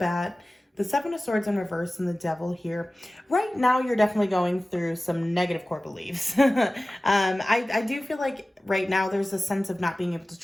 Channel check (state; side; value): normal; both; correlation 0.97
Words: the 7 of Swords in reverse and the Devil here. Right now, you're definitely going through some negative core beliefs. I do feel like right now there's a sense of not being able to